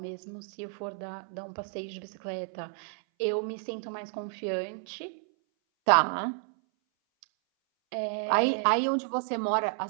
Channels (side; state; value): left; silent; 57 dB below the other